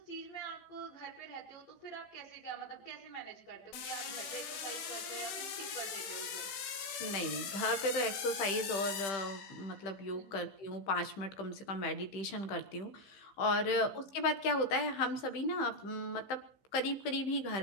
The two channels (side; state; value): right; late; 16 ms